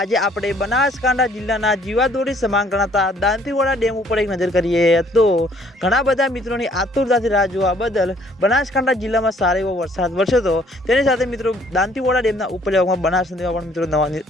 આજે આપણે બનાસકાંઠા જિલ્લાના જીવાદોરી સમાન ગણાતા દાંતીવાડા ડેમ ઉપર એક નજર કરીએ તો ઘણા બધા મિત્રોની આતુરતાથી રાહ જોવા બદલ બનાસકાંઠા જિલ્લામાં સારો એવો વરસાદ વરસ્યો હતો। તેની સાથે મિત્રો દાંતીવાડા ડેમના ઉપરવાસમાં બનાસ નદીમાં પણ મિત્રો નવા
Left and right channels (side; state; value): both; normal; correlation 0.61